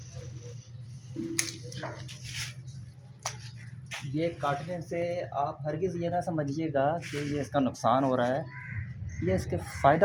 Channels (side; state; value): both; identical; correlation 1.00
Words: ये काटने से आप हरगिज़ ये ना समझिएगा कि ये इसका नुकसान हो रहा है, ये इसके